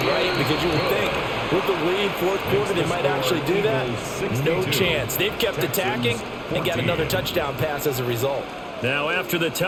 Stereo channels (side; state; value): both; identical; correlation 1.00